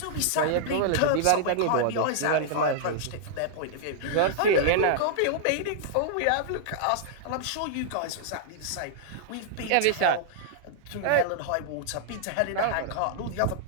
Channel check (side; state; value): both; different; correlation -0.01